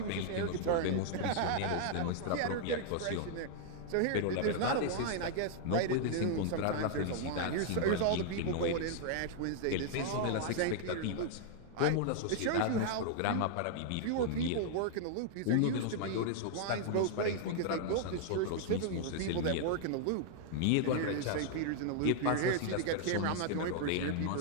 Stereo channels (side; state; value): both; different; correlation -0.01